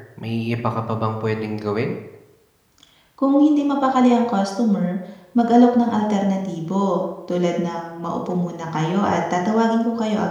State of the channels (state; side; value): identical; both; correlation 1.00